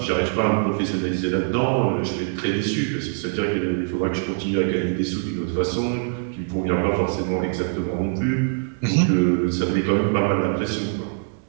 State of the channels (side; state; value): left; silent; 63 dB below the other